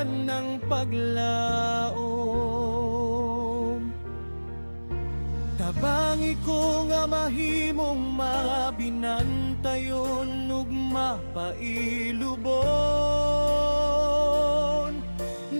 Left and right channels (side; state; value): both; inverted; correlation -1.00